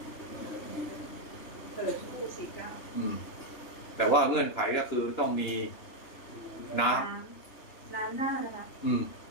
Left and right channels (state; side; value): late; right; 2.9 ms